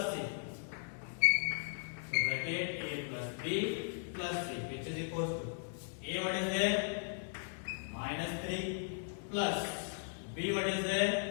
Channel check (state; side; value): silent; right; digital silence